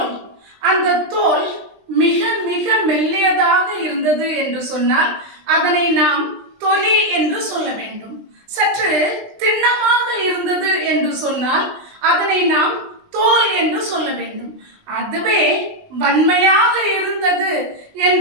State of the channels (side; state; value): left; late; 20 ms